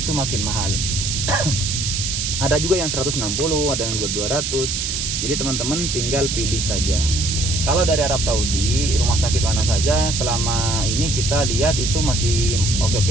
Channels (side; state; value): right; noise; hiss, 1 dB below the sound